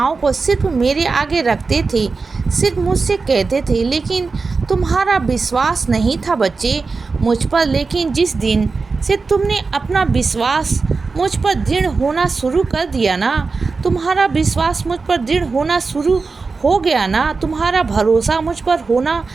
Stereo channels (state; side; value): quieter; left; 4.3 dB